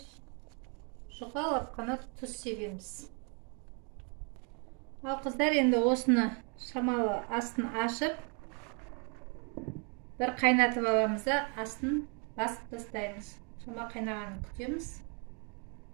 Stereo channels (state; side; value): quieter; left; 37.7 dB